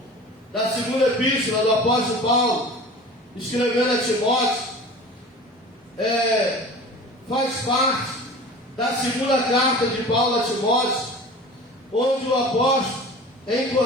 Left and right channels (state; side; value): normal; both; correlation 0.39